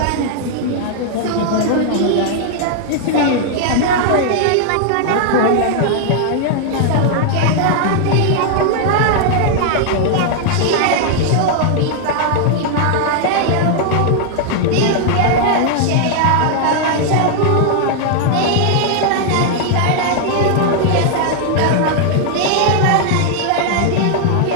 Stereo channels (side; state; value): both; different; correlation 0.00